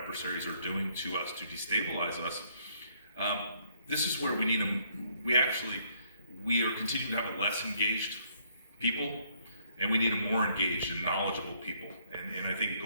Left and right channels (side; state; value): both; inverted; correlation -0.68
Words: are doing to us to destabilize us. This is where we need them. We are continuing to have a less engaged people, and we need a more engaged and knowledgeable people. And I think it